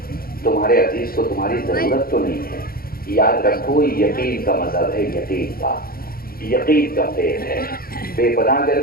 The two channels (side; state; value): right; late; 0.43 ms